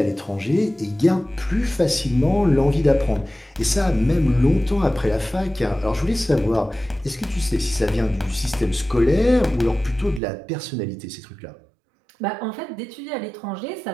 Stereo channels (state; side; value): drops out; left; at 10.2 s